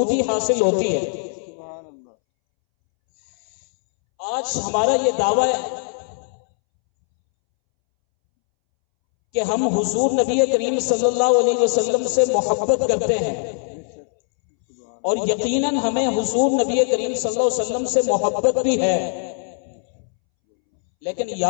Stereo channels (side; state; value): right; silent; 65 dB below the other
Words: حاصل ہوتی ہے۔ آج ہمارا یہ دعویٰ ہے کہ ہم حضور نبی کریم صلی اللہ علیہ وسلم سے محبت کرتے ہیں، اور یقیناً ہمیں حضور نبی کریم صلی اللہ علیہ وسلم سے محبت بھی ہے، لیکن